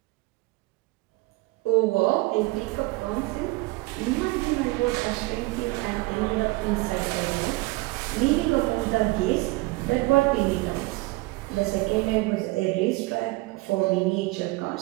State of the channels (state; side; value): quieter; left; 22.5 dB